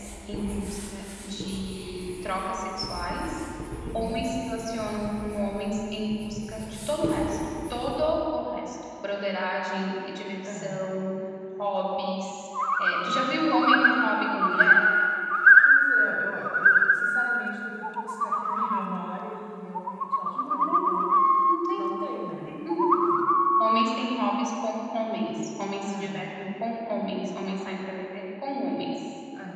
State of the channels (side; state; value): both; identical; correlation 1.00